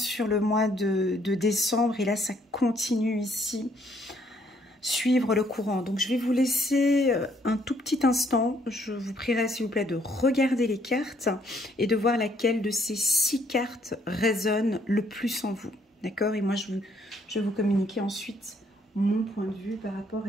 le mois de décembre et là, ça continue ici. Suivre le courant. Donc, je vais vous laisser un tout petit instant. Je vous prierai, s'il vous plaît, de regarder les cartes et de voir laquelle de ces 6 cartes résonne le plus en vous. D'accord? Et moi, je vais vous communiquer ensuite mon point de vue par rapport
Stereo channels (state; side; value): normal; both; correlation 0.68